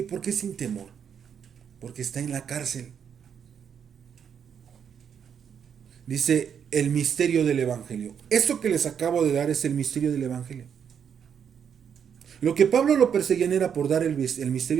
¿Por qué sin temor? Porque está en la cárcel. Dice el misterio del evangelio. Esto que les acabo de dar es el misterio del evangelio. Lo que Pablo lo perseguían era por dar el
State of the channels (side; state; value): left; quieter; 7.8 dB